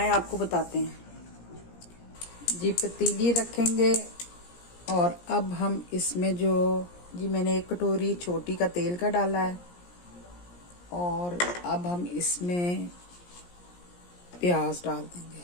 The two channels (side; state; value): right; late; 17 ms